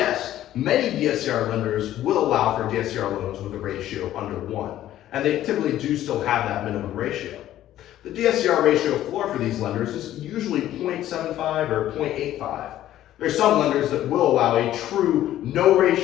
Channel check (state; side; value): quieter; right; 13.0 dB